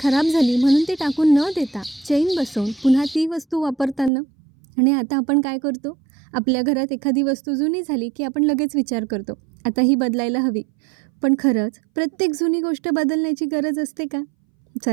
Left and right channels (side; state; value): left; drops out; at 4.1 s